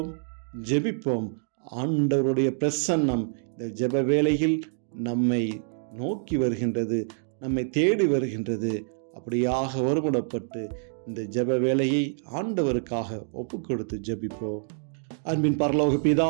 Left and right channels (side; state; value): left; silent; 60 dB below the other